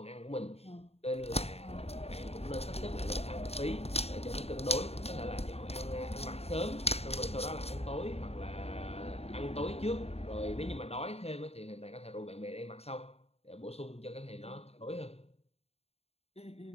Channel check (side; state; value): right; late; 0.30 ms